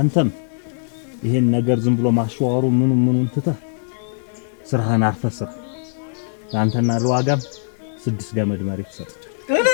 ይሄን ነገር ዝም ብሎ ማሽዋሩ ምኑን ትተህ ስራህን አርፈህ ስራ። ለአንተና ለዋጋም 6 ገመድ መሬት ሰጥቻለሁ።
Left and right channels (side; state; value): right; silent; 65 dB below the other